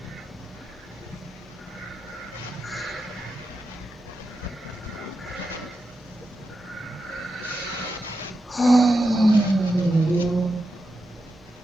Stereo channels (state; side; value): normal; both; correlation 0.88